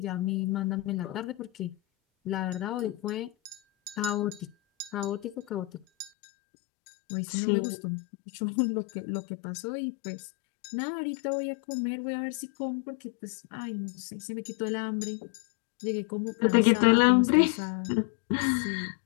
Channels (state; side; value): drops out; right; at 6.1 s